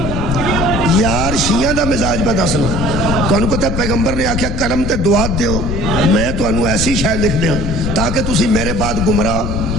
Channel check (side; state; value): left; noise; rumble, 3 dB below the sound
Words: یار شیعہ دا مزاج پہ دسنا تو انہوں پتہ پیغمبر نے آکھیا قلم تے دعات دیو میں تو انہوں ایسی شاید لکھ دیا تاکہ تسی میرے بعد گمراہ